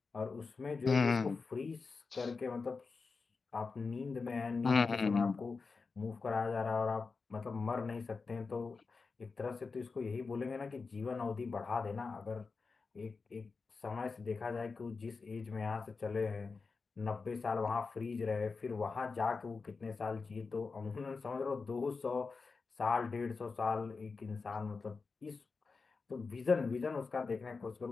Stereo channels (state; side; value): quieter; right; 4.5 dB